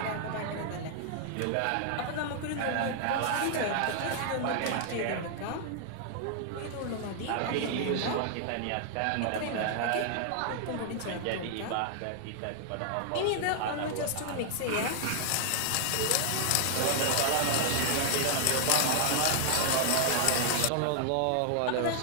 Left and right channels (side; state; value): both; different; correlation 0.00